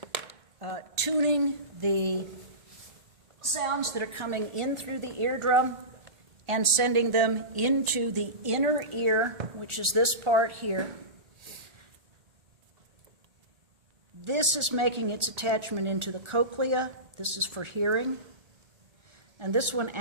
tuning the sounds that are coming in through the eardrum and sending them into the inner ear, which is this part here. This is making its attachment into the cochlea. This is for hearing. And this one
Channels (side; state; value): left; late; 1.4 ms